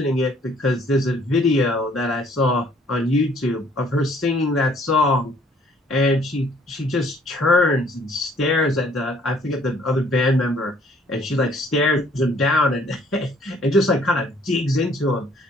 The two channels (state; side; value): normal; both; correlation 0.60